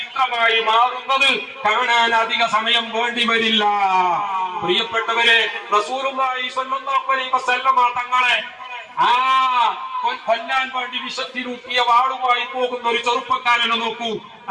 മാറുന്നത് കാണാൻ അധിക സമയം വേണ്ടി വരില്ല. പ്രിയപ്പെട്ടവരെ, റസൂലുള്ളാഹി സ്വല്ലല്ലാഹു അലൈഹി വസല്ലമ തങ്ങളെ കൊല്ലാൻ വേണ്ടി വിഷത്തിലൂട്ടിയ വാളുമായി പോകുന്ന ഒരു ചെറുപ്പക്കാരനെ നോക്കൂ.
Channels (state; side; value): identical; both; correlation 1.00